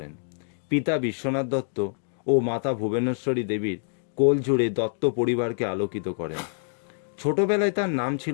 পিতা বিশ্বনাথ দত্ত ও মাতা ভুবনেশ্বরী দেবীর কোল জুড়ে দত্ত পরিবারকে আলোকিত করেন। ছোটবেলায় তার নাম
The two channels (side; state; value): right; silent; digital silence